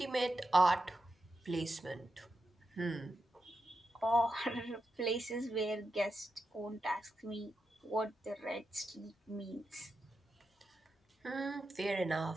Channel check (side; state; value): both; normal; correlation 0.88